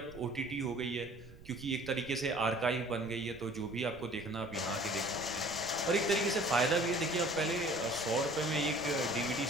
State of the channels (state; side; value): noise; right; rumble, 19 dB below the sound